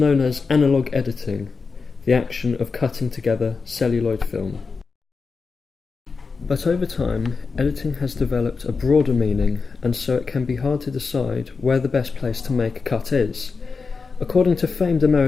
as analog editing, the action of cutting together celluloid film. But over time, editing has developed a broader meaning, and so it can be hard to decide where the best place to make a cut is. According to famed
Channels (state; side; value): quieter; right; 4.7 dB